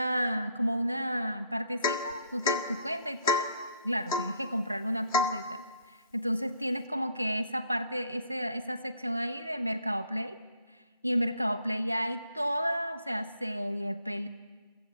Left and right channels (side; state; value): both; inverted; correlation -0.66